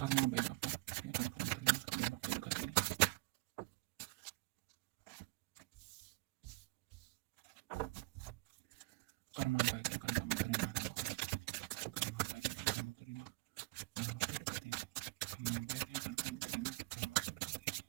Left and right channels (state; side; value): quieter; left; 23.9 dB